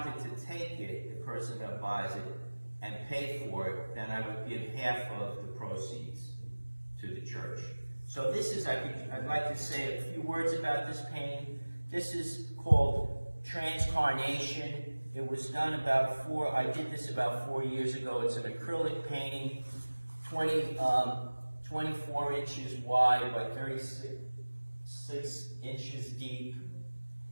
to take it, the person that buys it, and pay for it, then I would give half of the proceeds to the church. So this is, I'd like to say a few words about this painting. This is called Transcarnation. It was done I did this about 4 years ago. It's an acrylic painting, 24 inches wide by 36 inches deep.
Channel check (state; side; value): inverted; both; correlation -1.00